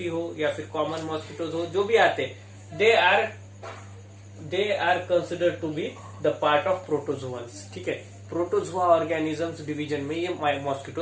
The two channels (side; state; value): both; identical; correlation 1.00